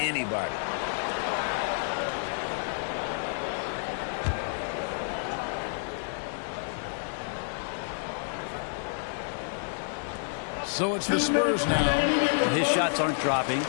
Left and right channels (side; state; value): right; silent; 58 dB below the other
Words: So it's the Spurs now. Well, his shots aren't dropping,